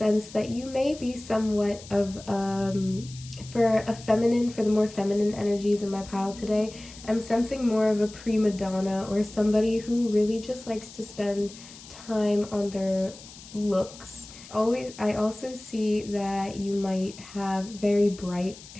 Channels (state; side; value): noise; left; hiss, 18 dB below the sound